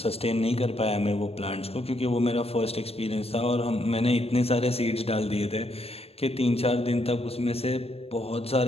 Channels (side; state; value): right; late; 0.29 ms